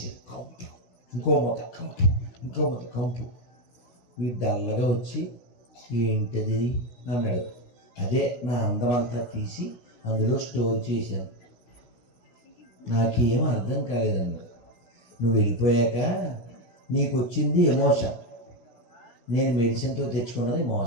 కంపు, ఇంకో మూత కంపు, ఇంకో మూత కంపు. వీడు డల్లగా వచ్చి ఏంటది అన్నాడు. అదే నా అందం అంతా తీసి అందులో స్టోర్ చేశాను, నాకేం అర్థం కాలేదన్నాడు. నువ్వు వెళ్ళిపోయాక నీకు వచ్చింది ఎమోషన్, నేను మెడిసిన్తో తెచ్చుకున్నది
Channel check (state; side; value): late; right; 16 ms